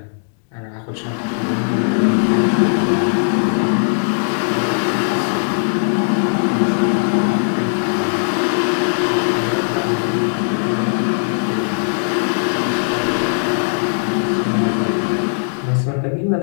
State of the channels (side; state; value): right; silent; digital silence